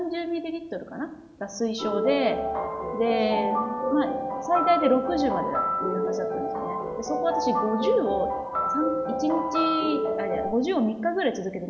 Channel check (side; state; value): both; identical; correlation 1.00